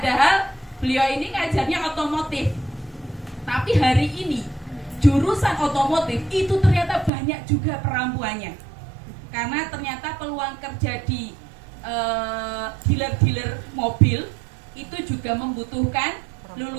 beliau ini ngajarnya otomotif. Tapi hari ini jurusan otomotif itu ternyata banyak juga perempuannya. Karena ternyata peluang kerja di dealer-dealer mobil itu juga membutuhkan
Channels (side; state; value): left; drops out; at 7.1 s